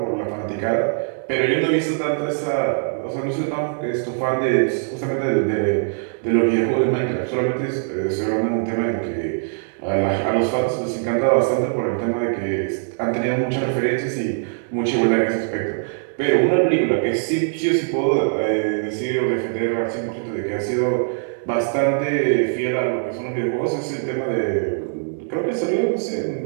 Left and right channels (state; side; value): silent; left; digital silence